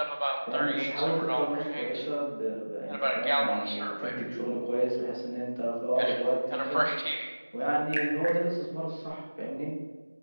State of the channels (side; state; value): both; inverted; correlation -1.00